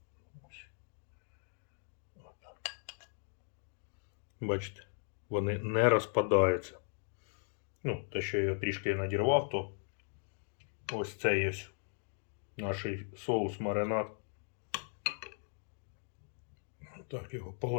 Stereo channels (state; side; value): silent; right; 53 dB below the other